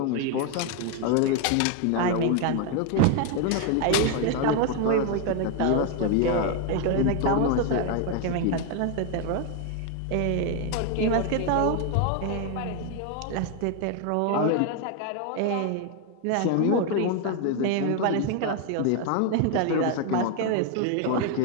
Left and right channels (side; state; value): both; different; correlation 0.01